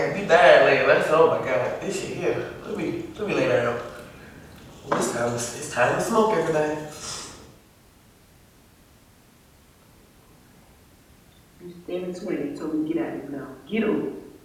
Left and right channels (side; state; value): both; identical; correlation 1.00